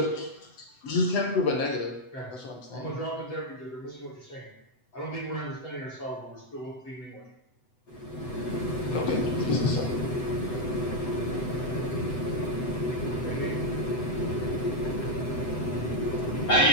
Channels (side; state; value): right; late; 7.9 ms